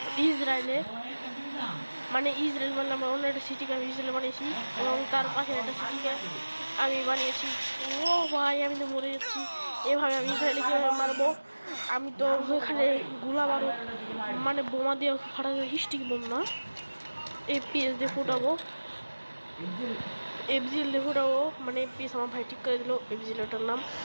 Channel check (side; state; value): both; inverted; correlation -1.00